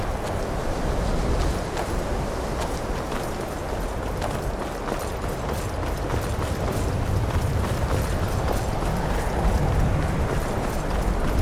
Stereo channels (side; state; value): both; identical; correlation 1.00